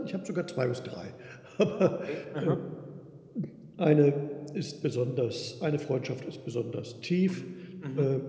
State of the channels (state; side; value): identical; both; correlation 1.00